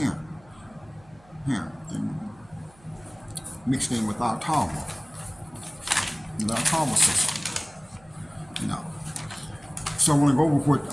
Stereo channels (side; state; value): right; noise; hum, 27 dB below the sound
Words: and mixed in with our Talwa, system. So I want to go over